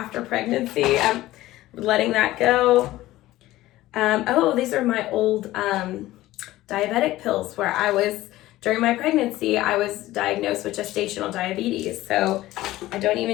pregnancy. I'm letting that go. Oh, these are my old diabetic pills where during my pregnancy, I was diagnosed with gestational diabetes. So I don't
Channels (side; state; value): right; quieter; 16.3 dB